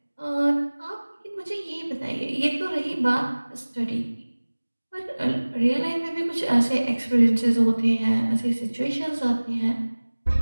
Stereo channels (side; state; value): both; inverted; correlation -1.00